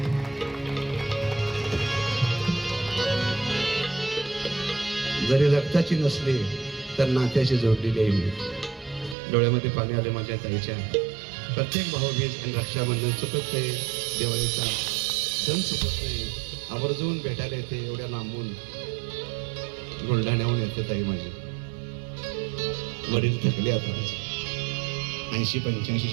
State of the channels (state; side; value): drops out; left; at 9.2 s